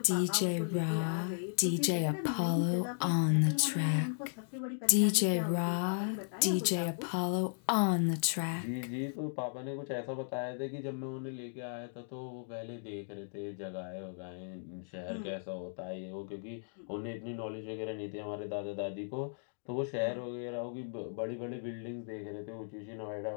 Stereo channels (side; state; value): right; silent; digital silence